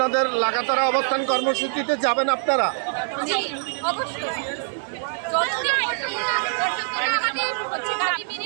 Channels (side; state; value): left; silent; 63 dB below the other